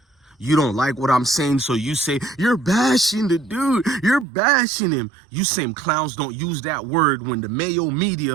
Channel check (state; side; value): drops out; left; at 4.2 s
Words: You don't like what I'm saying, so you say, you're bashing the dude. You're bashing him. You same clowns don't use that word when the Mayo